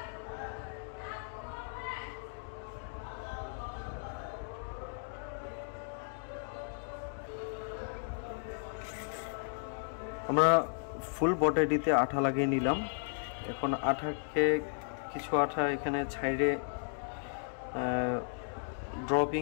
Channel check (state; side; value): silent; right; digital silence